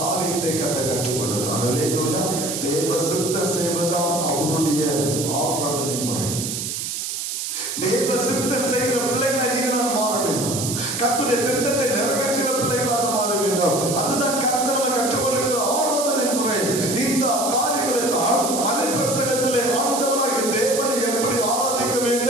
கற்றுக் கொடுத்தார். அல்லேலூயா. தேவ சித்தம் செய்வதுதான் அவருடைய ஆராதனை முறை. தேவ சித்தம் செய்கிற பிள்ளைகளை நீங்கள் மாற வேண்டும். கர்த்தருடைய திட்டத்தை நிறைவேற்றுகிற பிள்ளைகளாக மாற வேண்டும். அதுதான் கர்த்தர் நம்ம கற்றுக்கொள்கிற ஆராதனை முறை. இந்த காரியங்களை தான் மலை பிரசங்கத்திலே ஆண்டவராகிய தேவனை எப்படி ஆராதிக்க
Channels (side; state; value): right; noise; hiss, 4 dB below the sound